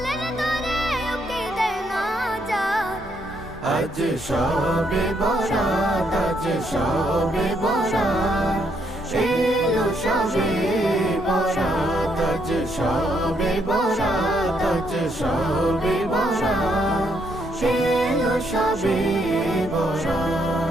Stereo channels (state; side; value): normal; both; correlation 0.74